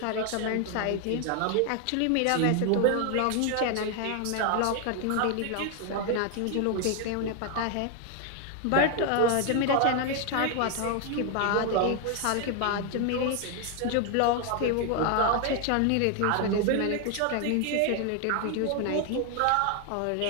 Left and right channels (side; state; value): both; different; correlation 0.01